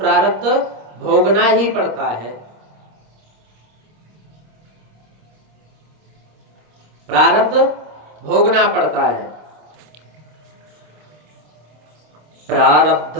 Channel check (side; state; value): left; late; 26 ms